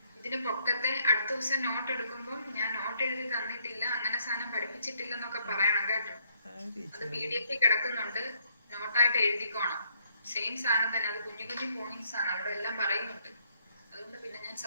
ഇതിന് പൊക്കത്തെ അടുത്ത ദിവസം നോട്ട് എടുക്കുമ്പോൾ ഞാൻ നോട്ട് എഴുതി തന്നിട്ടില്ല, അങ്ങനെ സാധനം പഠിപ്പിച്ചിട്ടില്ല എന്നൊക്കെ പറയണം കേട്ടോ. അത് PDF കിടക്കുന്നുണ്ട്, നോട്ടായിട്ട് എഴുതിക്കോണം. സെയിം സാധനം തന്നെ, അത് കുഞ്ഞു കുഞ്ഞു പോയിന്റ്സ് ആണ്, അവിടെ എല്ലാം പറയുന്നുണ്ട്. അതുകൊണ്ട് പിന്നെ ഞാൻ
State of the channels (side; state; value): both; inverted; correlation -0.68